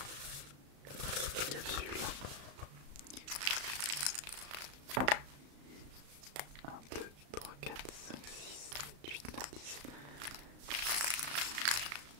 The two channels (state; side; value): late; left; 35 ms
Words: capsules? 1, 2, 3, 4, 5, 6, 7, 8, 9, 10.